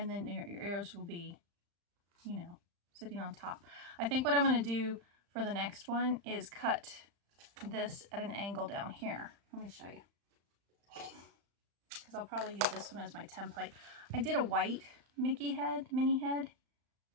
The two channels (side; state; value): left; late; 35 ms